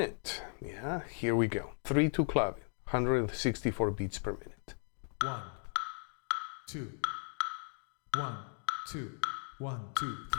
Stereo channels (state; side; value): silent; right; 53 dB below the other